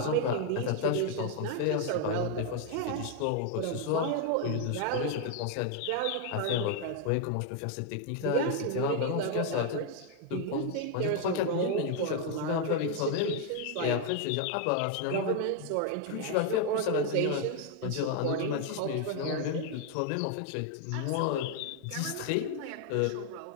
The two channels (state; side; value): different; both; correlation 0.00